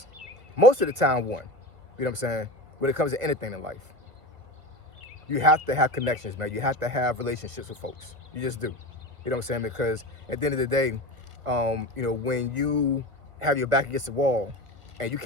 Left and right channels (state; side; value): late; left; 1.5 ms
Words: most of the time won. You know what I'm saying? When it comes to anything in life, you have to have connections, man. You have to have relationships with folks. You just do. You know what I'm saying? Because at the end of the day, when you have your back against the wall and you